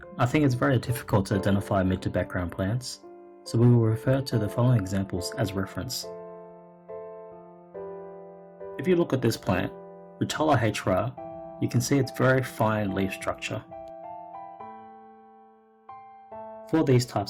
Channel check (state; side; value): identical; both; correlation 1.00